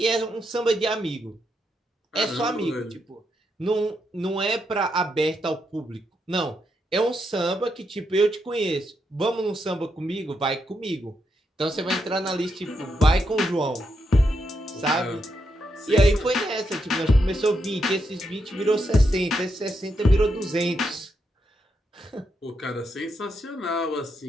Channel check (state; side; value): normal; both; correlation 0.81